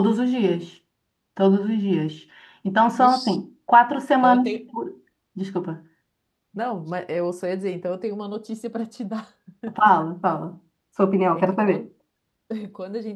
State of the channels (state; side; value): identical; both; correlation 1.00